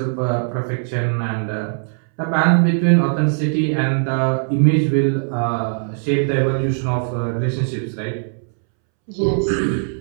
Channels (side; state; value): left; silent; 66 dB below the other